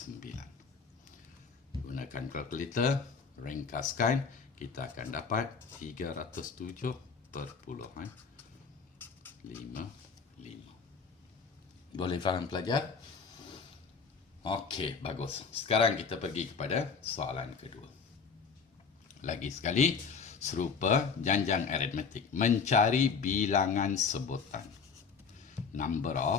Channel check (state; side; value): quieter; right; 5.5 dB